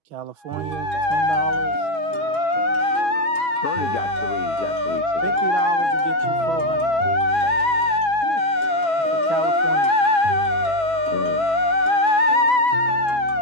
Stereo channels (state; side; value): late; left; 6.1 ms